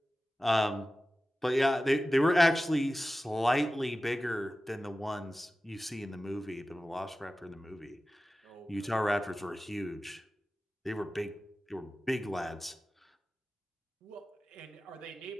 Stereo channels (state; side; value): normal; both; correlation 0.95